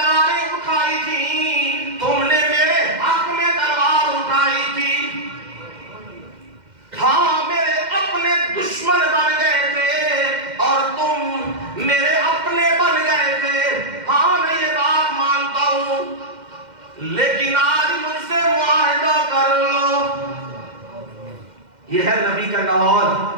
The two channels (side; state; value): left; late; 2.1 ms